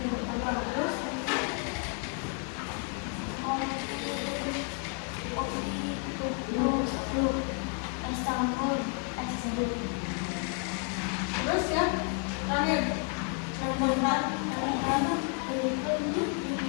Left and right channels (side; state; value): right; quieter; 39.4 dB